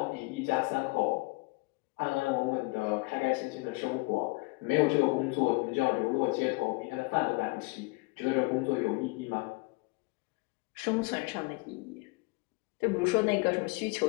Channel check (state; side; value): quieter; right; 26.4 dB